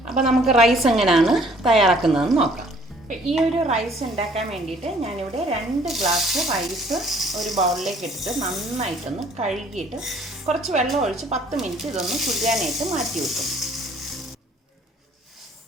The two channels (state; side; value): normal; both; correlation 0.58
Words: അപ്പോൾ നമുക്ക് റൈസ് എങ്ങനെയാണ് തയ്യാറാക്കുന്നതെന്ന് നോക്കാം. അപ്പോൾ ഈ ഒരു റൈസ് ഉണ്ടാക്കാൻ വേണ്ടിയിട്ട് ഞാനിവിടെ 2 ഗ്ലാസ് റൈസ് ഒരു ബൗളിലേക്ക് ഇട്ടിട്ട് നന്നായിട്ടൊന്ന് കഴുകിയിട്ട് കുറച്ച് വെള്ളം ഒഴിച്ച് 10 മിനിറ്റ് ഇതൊന്ന് കുതിരാനായിട്ട് മാറ്റി വെക്കും.